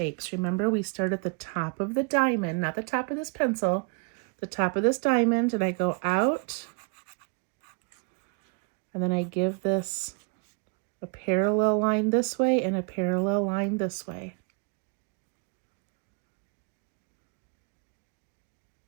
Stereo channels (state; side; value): quieter; left; 33.0 dB